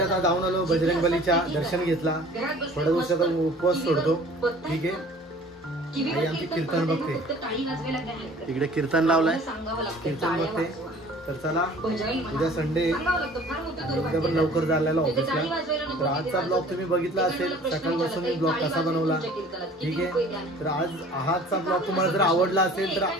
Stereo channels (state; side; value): normal; both; correlation 0.48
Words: जाऊन आलो. बजरंगबलीच्या दर्शन घेतला. थोड्या दिवसाचा उपवास सोडतो. ठीक आहे आणि आमची कीर्तन बघते. तिकडे कीर्तन लावलाय. कीर्तन बघते. तर चला उद्या संडे उद्या पण लवकर झालेला ऑफिसला. तर आजचा ब्लॉग तुम्ही बघितला असेल. सकाळपासून मी ब्लॉग कसा बनवला. ठीक आहे तर आजचा ब्लॉग तुम्हाला जर आवडला असेल तर